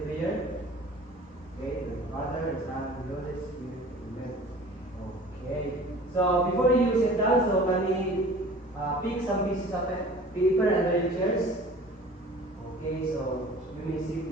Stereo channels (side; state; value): both; normal; correlation 0.45